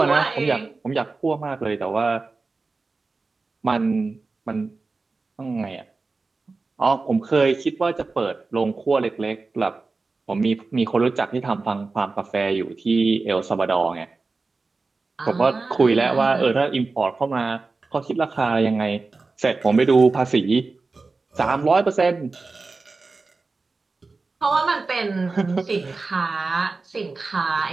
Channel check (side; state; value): left; quieter; 3.9 dB